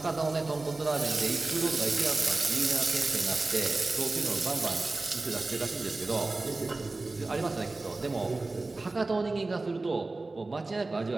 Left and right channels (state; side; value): quieter; left; 3.3 dB